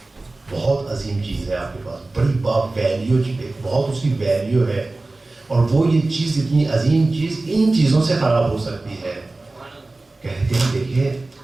بہت عظیم چیز ہے آپ کے پاس, بڑی باپ ویلیو, بہت اس کی ویلیو ہے, اور وہ یہ چیز اتنی عظیم چیز ان چیزوں سے خراب ہو سکتی ہے. کہتے ہیں دیکھیے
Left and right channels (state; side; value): quieter; left; 3.1 dB